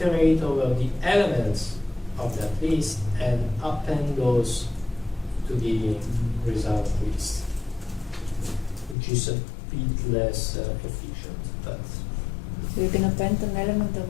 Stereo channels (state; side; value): drops out; right; at 9.0 s